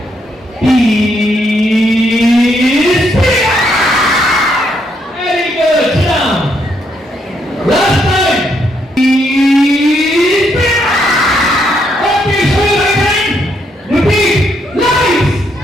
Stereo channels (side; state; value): both; normal; correlation 0.75